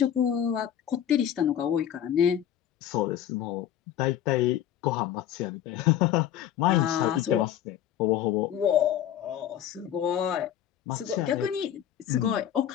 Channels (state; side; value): quieter; right; 10.6 dB